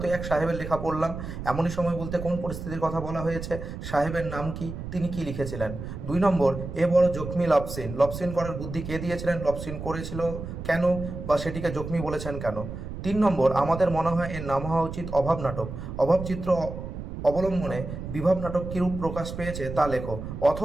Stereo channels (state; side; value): noise; right; rumble, 8 dB below the sound